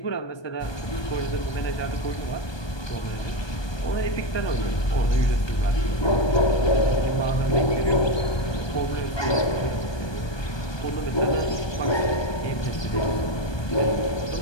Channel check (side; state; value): right; late; 1.2 ms